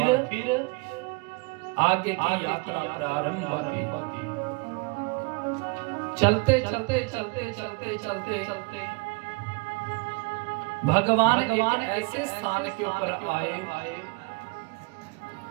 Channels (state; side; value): quieter; left; 29.2 dB